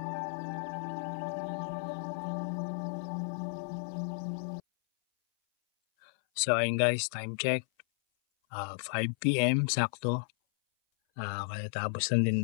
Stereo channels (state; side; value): silent; right; 56 dB below the other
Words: So ayun guys, time check 5 PM sakto. Kaya tapos lang din